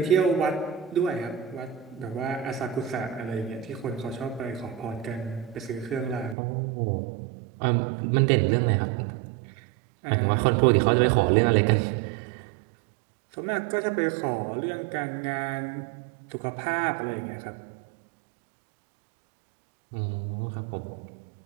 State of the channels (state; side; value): drops out; left; at 6.4 s